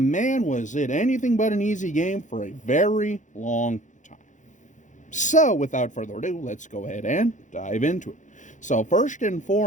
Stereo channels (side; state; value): right; late; 0.36 ms